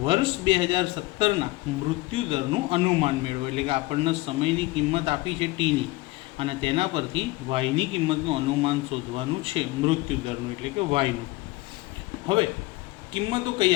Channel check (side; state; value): right; quieter; 20.9 dB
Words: વર્ષ 2017ના મૃત્યુદરનું અનુમાન મેળવો. એટલે કે આપણને સમયની કિંમત આપી છે ટીની અને તેના પરથી વાયની કિંમતનું અનુમાન શોધવાનું છે મૃત્યુદરનું એટલે કે વાયનું. હવે કિંમતો કઈ